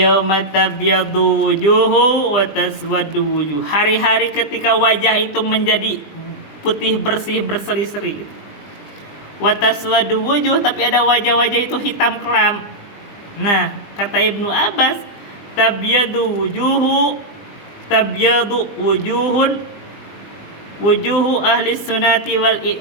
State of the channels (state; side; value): late; right; 20 ms